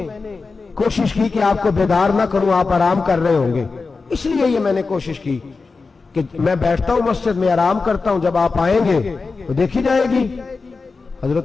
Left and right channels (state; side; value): quieter; right; 4.2 dB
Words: کوشش کی کہ آپ کو بیدار نہ کروں، آپ آرام کر رہے ہوں گے، اس لیے یہ میں نے کوشش کی کہ میں بیٹھتا ہوں مسجد میں آرام کرتا ہوں، جب آپ آئیں گے تو دیکھی جائے گی۔